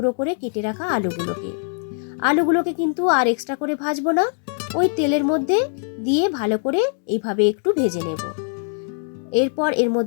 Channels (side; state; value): right; silent; digital silence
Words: করে কেটে রাখা আলুগুলোকে। আলুগুলোকে কিন্তু আর এক্সট্রা করে ভাজবো না, ওই তেলের মধ্যে দিয়ে ভালো করে এইভাবে একটু ভেজে নেব। এরপর এর